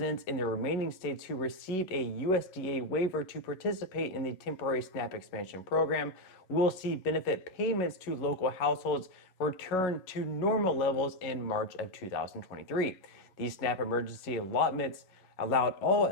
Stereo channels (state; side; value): late; right; 11 ms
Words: in the remaining states who received a USDA waiver to participate in the temporary SNAP expansion program will see benefit payments to local households return to normal levels in March of 2023. These SNAP emergency allotments allowed all